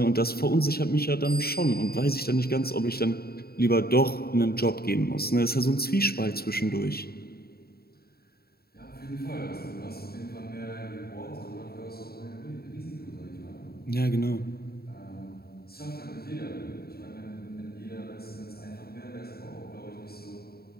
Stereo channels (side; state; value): right; late; 0.45 ms